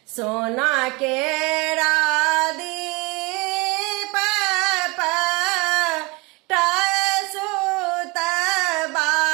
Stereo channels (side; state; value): left; quieter; 26.0 dB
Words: सोना केरा दीप सुत